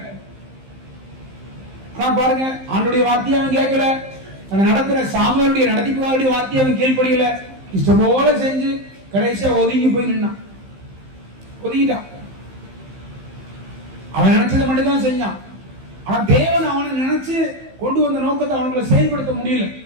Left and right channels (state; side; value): late; left; 15 ms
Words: ஆனா பாருங்க, ஆண்டோடைய வார்த்தையை அவன் கேட்கல. அவன் நடக்கிற சாமுவேலுடைய நடத்திப்புடைய வார்த்தையை அவன் கீழ்ப்படியல. இஷ்டம் போல செஞ்சு கடைசியா ஒதுங்கி போய் நின்னான், ஒதுங்கிட்டான். அவன் நினைச்சதை மட்டும் தான் செஞ்சான். ஆனா தேவன் அவனை நினைச்சு கொண்டு வந்த நோக்கத்தை அவனுக்குள்ள செயல்படுத்த முடியல.